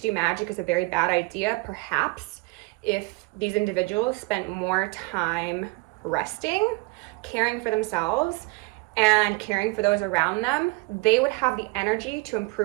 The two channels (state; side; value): quieter; left; 25.7 dB